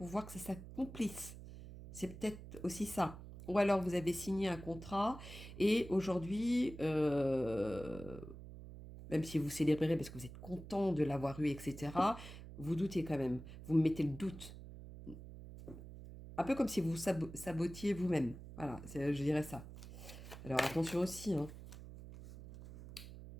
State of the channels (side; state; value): right; noise; hum, 13 dB below the sound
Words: que ça s'accomplisse? C'est peut-être aussi ça. Ou alors vous avez signé un contrat et aujourd'hui, même si vous célébrez parce que vous êtes content de l'avoir eu, etc., vous doutez quand même. Vous me mettez le doute. Un peu comme si vous sabotiez vous-même. Voilà, je dirais ça. Alors attention aussi, hein.